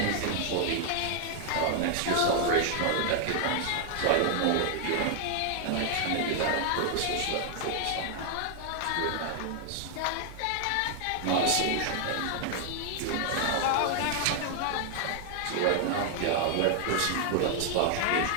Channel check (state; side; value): different; both; correlation 0.00